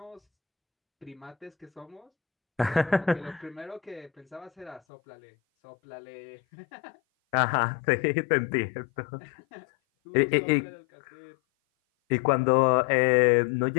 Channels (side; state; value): right; drops out; at 4.8 s